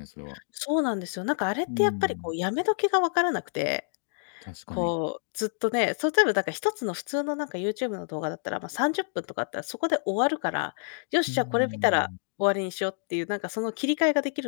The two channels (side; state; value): right; silent; digital silence